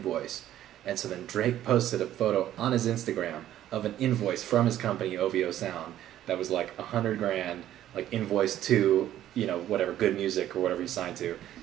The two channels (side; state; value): left; quieter; 12.3 dB